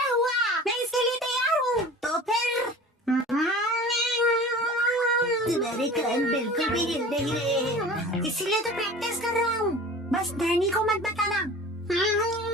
हुआ। मैं इसके लिए तैयार हूँ। तो फिर तुम्हारे कान बिल्कुल भी हिल नहीं रहे हैं, इसीलिए तो प्रैक्टिस कर रहा हूँ। बस डैनी को मत बताना।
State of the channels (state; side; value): normal; both; correlation 0.40